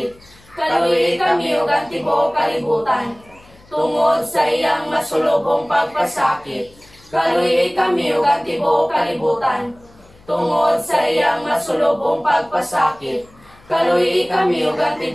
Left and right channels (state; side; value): noise; left; hum, 27 dB below the sound